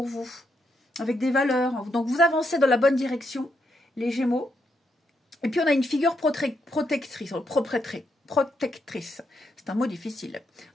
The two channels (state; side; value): normal; both; correlation 0.79